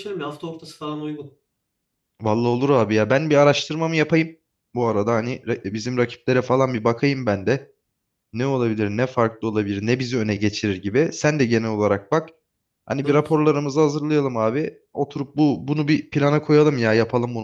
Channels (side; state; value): both; identical; correlation 1.00